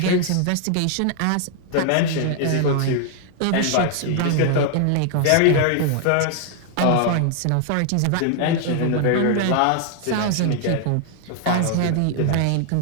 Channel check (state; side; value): different; both; correlation 0.00